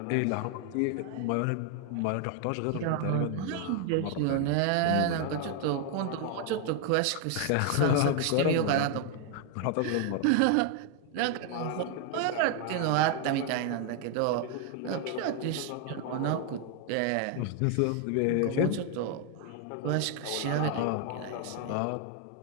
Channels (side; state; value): both; different; correlation 0.00